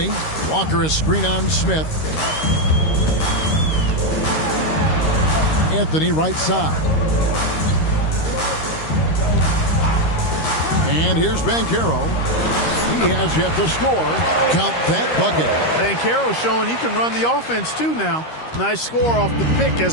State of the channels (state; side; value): late; right; 13 ms